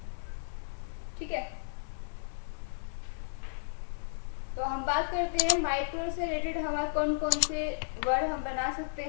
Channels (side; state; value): right; silent; digital silence